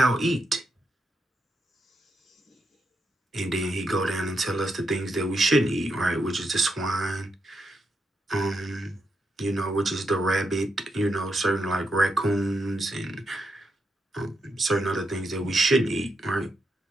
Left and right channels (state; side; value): normal; both; correlation 0.82